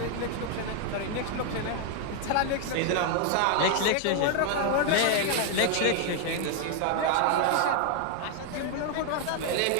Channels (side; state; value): both; different; correlation 0.00